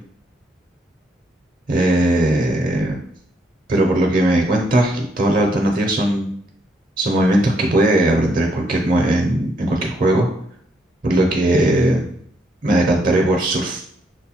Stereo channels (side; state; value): both; normal; correlation 0.73